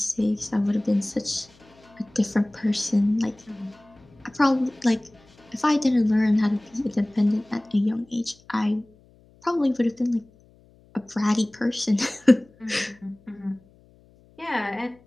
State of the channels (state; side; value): noise; left; hum, 29 dB below the sound